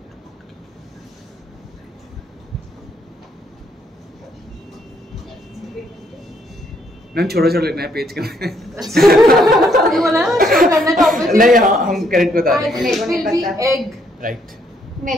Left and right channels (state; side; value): normal; both; correlation 0.71